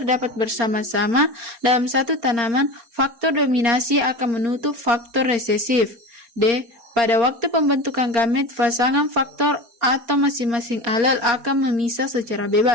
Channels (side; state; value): left; late; 4.3 ms